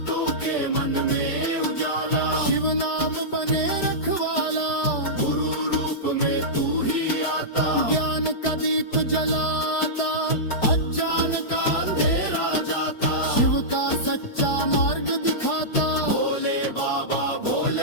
के मन में उजाला, शिव नाम बने रखवाला। गुरु रूप में तू ही आता, ज्ञान का दीप जलाता। अज्ञान का अंधेरा जाता, शिव का सच्चा मार्ग दिखाता। भोले बाबा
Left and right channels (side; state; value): right; late; 4.9 ms